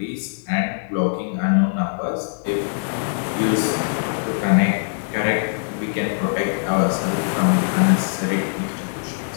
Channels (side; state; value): right; silent; digital silence